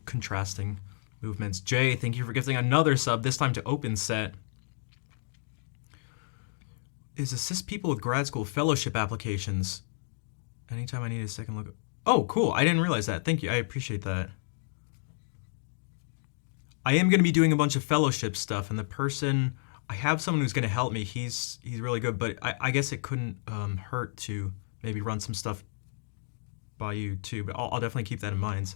contrasting movements. Jay, thank you for gifting another sub, this time to Open Set. Is assist people with grad school fellowship applications. Anytime I need a second look. Oh, cool. I didn't realize that. Thank you. I appreciate that. I am going to be doing a bunch of fellowship stuff, and the person, I have someone who's going to help me. He's really good, but I guess it couldn't hurt to maybe run some stuff by you too, but I'll definitely keep that in mind,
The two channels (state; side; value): silent; right; digital silence